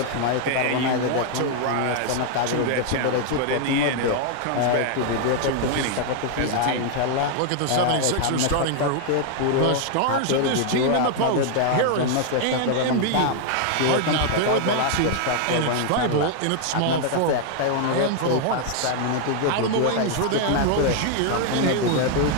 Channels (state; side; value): different; both; correlation 0.00